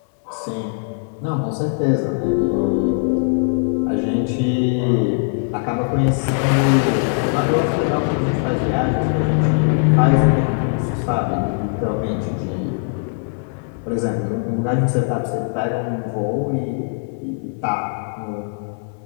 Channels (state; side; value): silent; right; 66 dB below the other